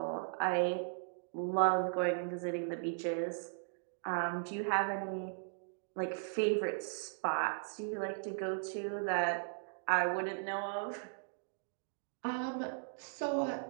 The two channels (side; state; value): left; silent; digital silence